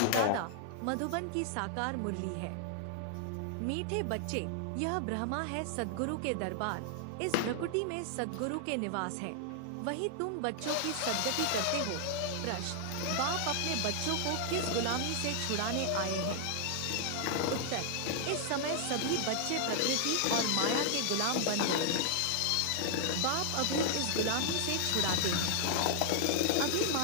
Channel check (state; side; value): different; both; correlation 0.00